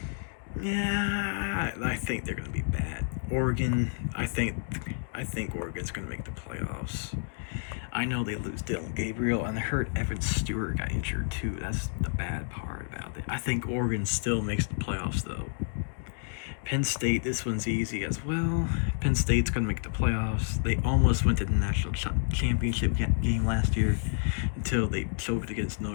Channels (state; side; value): silent; right; digital silence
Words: Yeah, I think they're going to be bad. Oregon, I think Oregon's going to make the playoffs. I know they lose Dylan Gabriel, and I heard Evan Stewart got injured too. That's the bad part about it. I think Oregon still makes the playoffs, though. Penn State, this one's easy as well. Penn State's going to make the playoffs. They almost went to the national championship game last year until they choked against